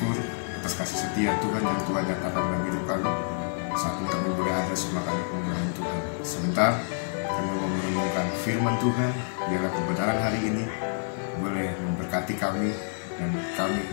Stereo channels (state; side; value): silent; right; digital silence